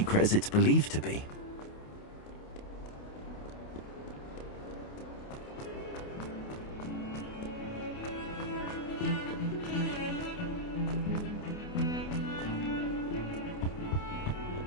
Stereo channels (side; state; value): right; late; 28 ms